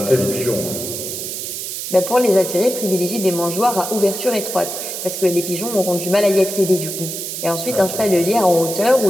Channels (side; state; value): right; noise; hiss, 6 dB below the sound